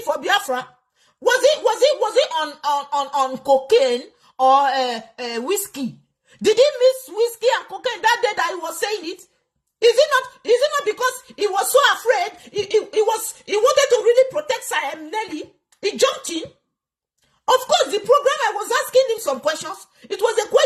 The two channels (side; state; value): both; identical; correlation 1.00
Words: for Biafra? Was it on cocaine or whiskey? Did he miss whiskey and cocaine that day that he was saying it? Is it not because he was so afraid? He wanted to really protect Nelly. He jumped in. Of course, the program I was asking him some questions. It was a